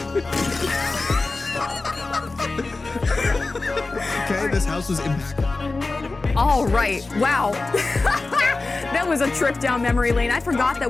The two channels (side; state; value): right; quieter; 3.5 dB